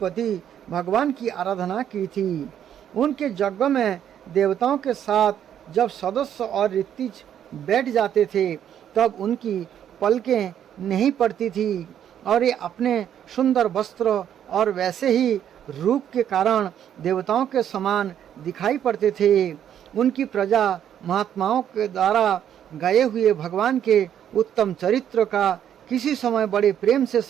भगवान की आराधना की थी। उनके यज्ञ में देवताओं के साथ जब सदस्य और ऋतिज बैठ जाते थे तब उनकी पलकें नहीं पड़ती थी और ये अपने सुंदर वस्त्र और वैसे ही रूप के कारण देवताओं के समान दिखाई पड़ते थे। उनकी प्रजा महात्माओं के द्वारा गाए हुए भगवान के उत्तम चरित्र का किसी समय बड़े प्रेम से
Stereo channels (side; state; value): left; quieter; 9.8 dB